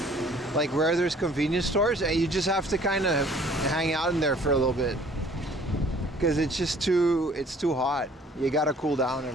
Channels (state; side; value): normal; both; correlation 0.55